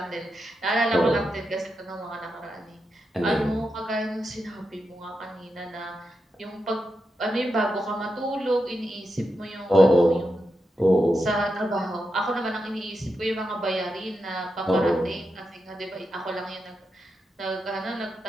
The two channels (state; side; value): normal; both; correlation 0.87